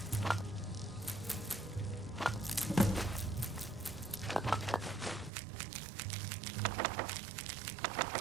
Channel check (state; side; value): drops out; left; at 5.3 s